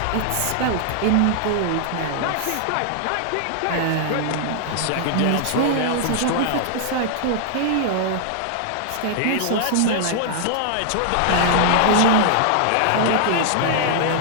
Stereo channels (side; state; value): both; different; correlation 0.00